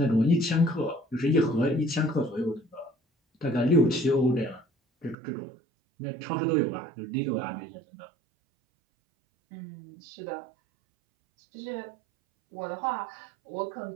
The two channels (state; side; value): drops out; left; at 5.2 s